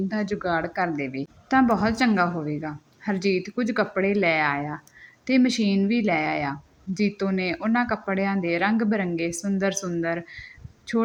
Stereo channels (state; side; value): identical; both; correlation 1.00